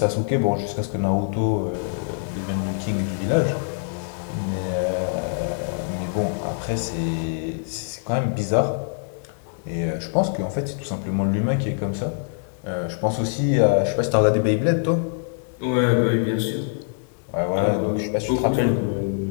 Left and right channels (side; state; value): right; silent; digital silence